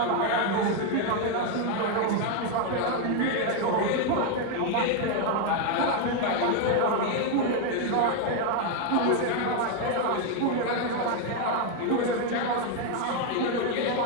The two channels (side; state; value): both; different; correlation 0.01